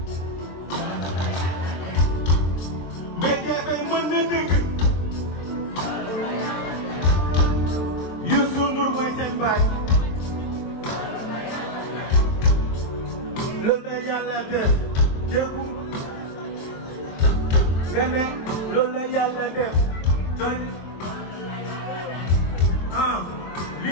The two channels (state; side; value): late; right; 23 ms